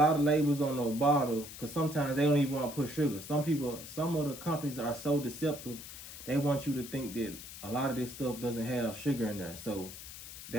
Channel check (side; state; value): left; noise; hiss, 12 dB below the sound